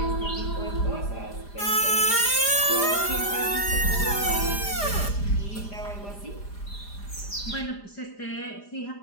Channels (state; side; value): late; right; 4.9 ms